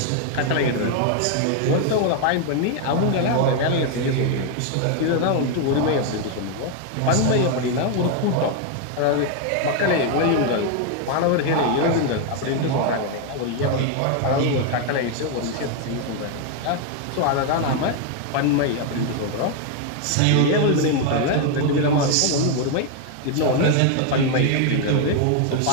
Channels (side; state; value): both; different; correlation 0.01